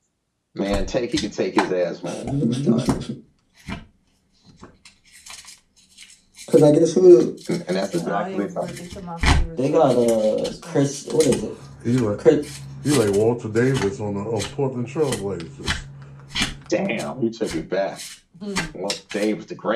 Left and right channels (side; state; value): both; identical; correlation 1.00